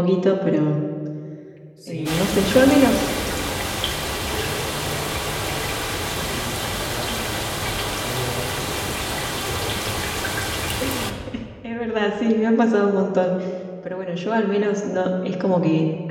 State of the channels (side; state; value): both; identical; correlation 1.00